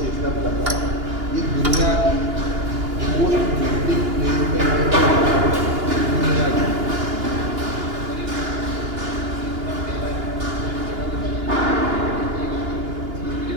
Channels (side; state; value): left; late; 2.9 ms